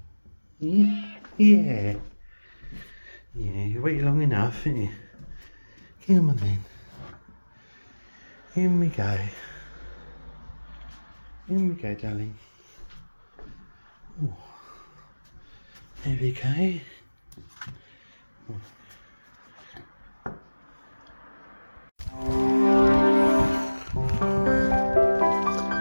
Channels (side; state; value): both; inverted; correlation -1.00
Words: Yeah. Yeah. Yeah, you waited long enough, didn't you? Come on then. In we go. In we go, darling. Oh, there we go.